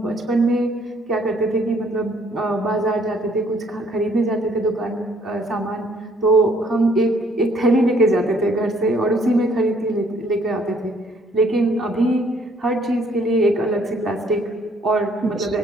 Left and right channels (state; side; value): normal; both; correlation 0.63